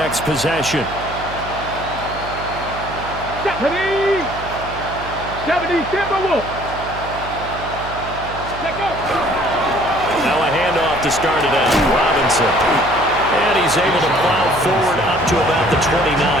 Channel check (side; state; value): right; noise; hum, 12 dB below the sound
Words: possession. 70 Timberwolves. Now a handoff to start it out. Robinson. And he's able to plow forward up to about the 29,